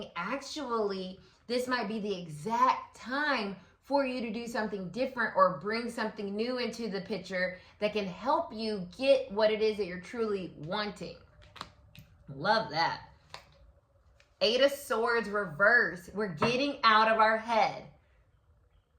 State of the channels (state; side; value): identical; both; correlation 1.00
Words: actually, this might be the exact time for you to do something different or bring something new into the picture that can help you get what it is that you're truly wanting. Love that. Eight of Swords reverse. We're getting out of our head.